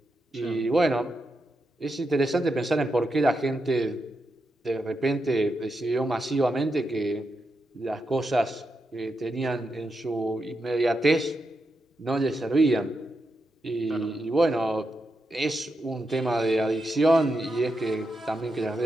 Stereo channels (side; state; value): both; normal; correlation 0.85